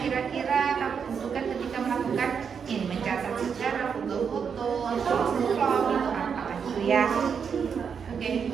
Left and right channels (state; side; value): quieter; left; 6.7 dB